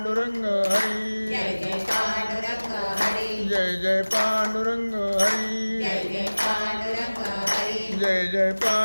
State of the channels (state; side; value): inverted; both; correlation -1.00